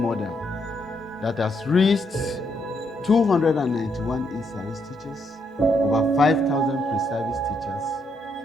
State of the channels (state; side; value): normal; both; correlation 0.76